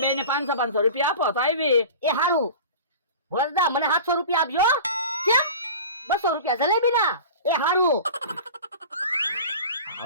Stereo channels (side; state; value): both; inverted; correlation -0.36